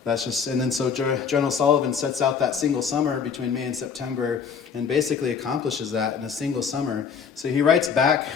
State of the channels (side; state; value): right; quieter; 6.5 dB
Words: that's just, and then so General Sullivan sets out that single summer between May and September and basically accomplishes that in a single summer. So he writes back